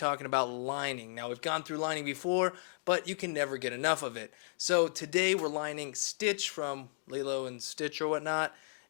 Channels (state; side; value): silent; right; digital silence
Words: about lining. Now we've gone through lining before, but you can never get enough of it. So today we're lining Stitch from Lilo and Stitch or whatnot,